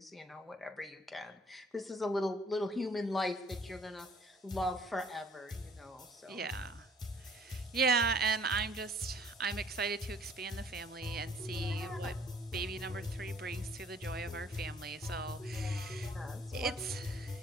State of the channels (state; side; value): normal; both; correlation 0.57